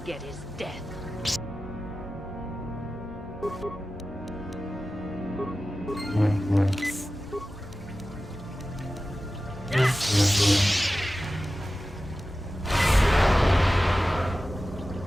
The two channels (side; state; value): both; normal; correlation 0.95